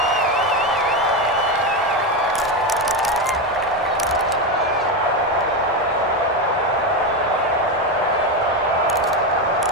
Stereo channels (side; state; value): both; normal; correlation 0.12